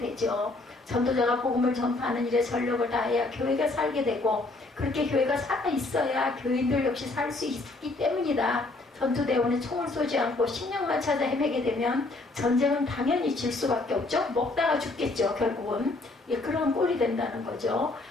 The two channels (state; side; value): quieter; right; 3.1 dB